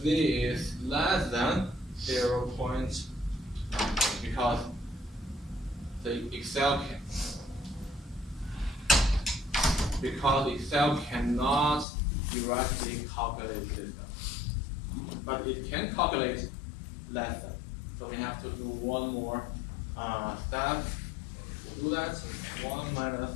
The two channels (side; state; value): right; drops out; at 11.9 s